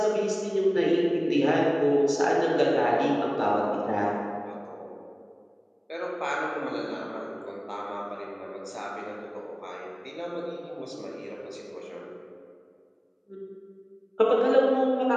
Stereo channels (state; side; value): identical; both; correlation 1.00